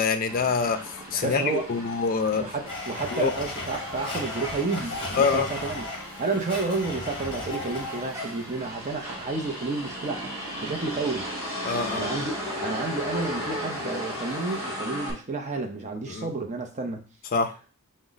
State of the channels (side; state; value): both; normal; correlation 0.10